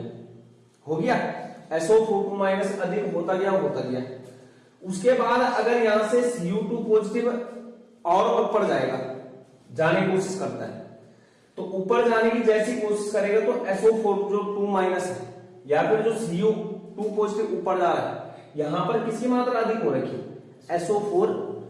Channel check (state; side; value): identical; both; correlation 1.00